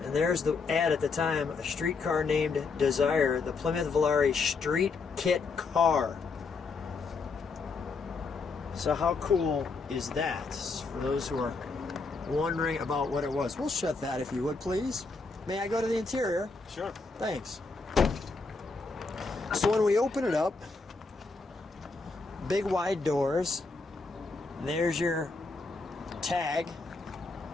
And there's the ad at the time, a streetcar named Desire, the Plymouth Volare street kit car. So how cool is that? For those who are wondering about what it was. We'll shut that if you would, please. May I go to the interior? Sure. Thanks. So when we open it up, big wide doors. There's your tag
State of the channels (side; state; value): right; quieter; 4.1 dB